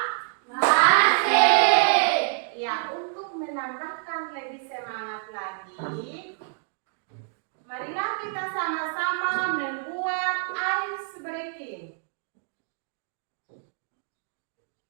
Ya, untuk menambahkan lebih semangat lagi, marilah kita sama-sama membuat ice breaking.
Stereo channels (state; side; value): silent; left; digital silence